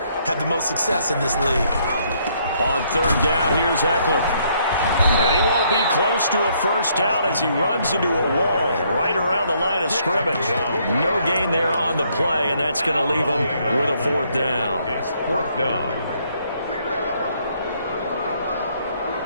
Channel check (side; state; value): both; inverted; correlation -0.69